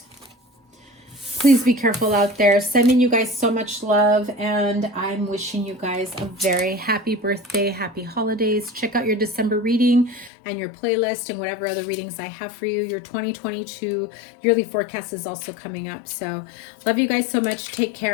Please be careful out there. Sending you guys so much love, and I'm wishing you guys a very happy birthday, happy holidays. Check out your December reading and your playlist and whatever other readings I have for you. Your 2022 yearly forecast is also coming up. So love you guys so much. Take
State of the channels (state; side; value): drops out; right; at 10.3 s